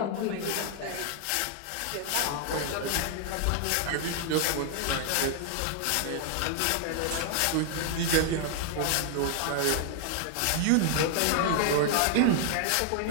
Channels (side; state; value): both; different; correlation 0.00